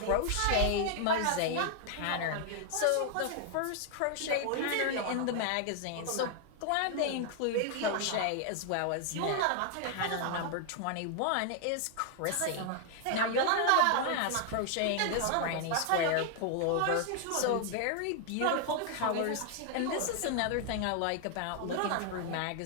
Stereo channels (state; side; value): different; both; correlation 0.00